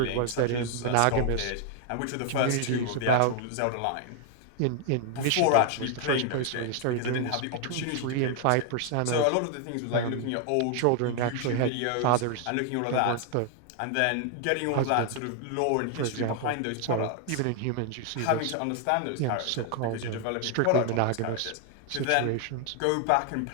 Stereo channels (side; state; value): both; different; correlation 0.00